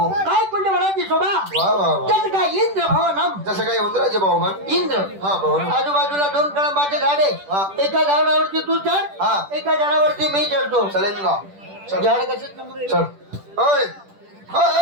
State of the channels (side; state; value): left; late; 10 ms